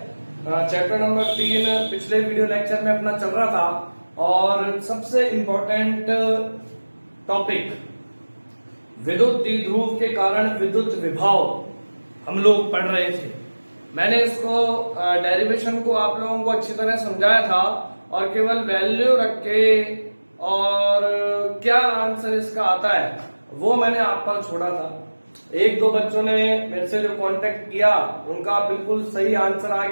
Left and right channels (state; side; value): inverted; both; correlation -1.00